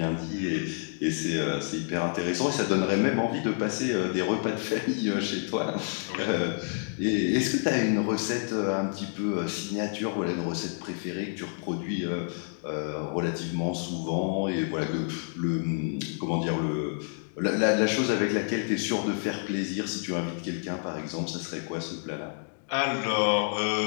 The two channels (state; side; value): silent; right; 59 dB below the other